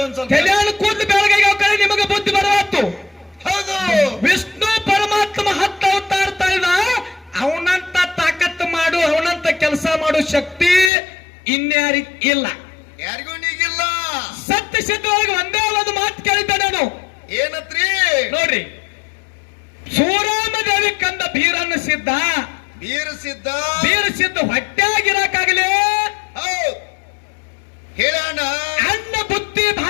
ಒಂದ್ ಸ್ವಲ್ಪ. ಕಲ್ಯಾಣ ಕೂದಲು ಬೆಳಗಾಗ್ಯಾವ ಕಡೆ ನಿಮಗ ಬುದ್ಧಿ ಬರವತ್ತು. ಹೌದು. ವಿಷ್ಣು ಪರಮಾತ್ಮ 10 ಅವತಾರ ತಾಳಿದ. ಅವನಂತ ತಾಕತ್ತು ಮಾಡು, ಅವನಂತ ಕೆಲಸ ಮಾಡು ಶಕ್ತಿ ಇನ್ಯಾರಿಗ ಇಲ್ಲ, ಯಾರಿಗೂ ನೀಗಿಲ್ಲ. ಸತ್ಯ ಸಿದ್ಧವಾಗಿ ಒಂದೇ ಒಂದು ಮಾತು ಕೇಳಿದ್ದೆ ನಾನು. ಏನತ್ರಿ? ನೋಡ್ರಿ, ಸೂರಾಮದೇವಿ ಕಂದ ಬೀರನ್ನ ಸಿದ್ಧ, ಬೀರ ಸಿದ್ಧ ಹೊಟ್ಟಾಗಿರಕಾಗಲೇ ಹೇಳೋಣ. ಅನ್ನ ಬುದ್ಧಿ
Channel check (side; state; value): right; drops out; at 10.9 s